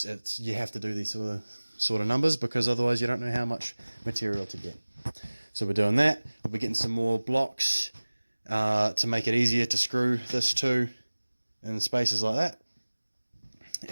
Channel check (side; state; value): both; inverted; correlation -1.00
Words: you have to do these sort of numbers, because otherwise you don't know how much material to get. So we're doing that. We'll be getting some more blocks to make it easier to screw this to in spaces like that.